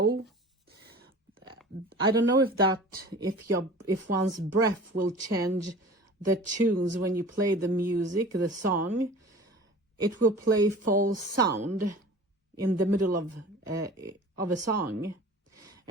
I don't know if one's breath will change the tunes when you play the music, the song. It will play false sound in the middle of a song,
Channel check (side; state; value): both; normal; correlation 0.40